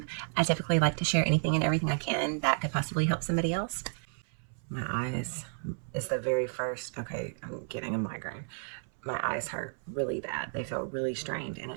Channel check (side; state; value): left; silent; 56 dB below the other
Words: I typically like to share anything and everything I can that could possibly help somebody else. My eyes is the very first, okay, I'm getting a migraine. My eyes hurt really bad. They feel really strained and